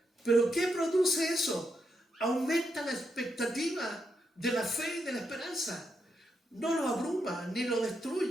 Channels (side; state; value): both; normal; correlation 0.82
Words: ¿Pero qué produce eso? Aumenta la expectativa de la fe y de la esperanza. No lo abruma, ni lo